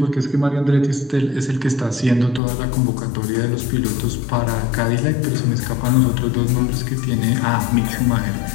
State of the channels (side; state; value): right; drops out; at 2.4 s